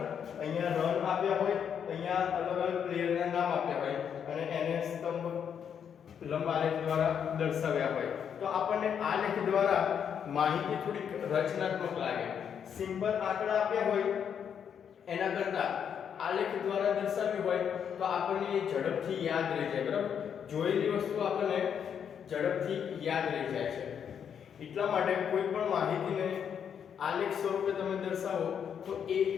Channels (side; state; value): right; quieter; 7.9 dB